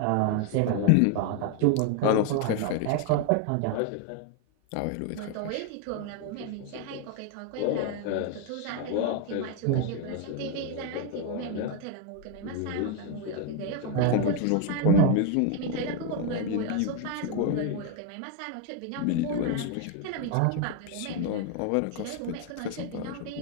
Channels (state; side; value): different; both; correlation 0.01